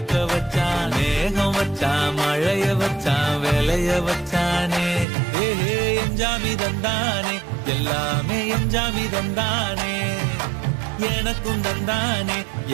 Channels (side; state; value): left; drops out; at 5.1 s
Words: வச்சான் மேகம் வச்சான் மழைய வச்சான் விளைய வச்சானே ஏஹே எஞ்சாமி தந்தானே எல்லாமே எஞ்சாமி தந்தானே எனக்கும் தந்தானே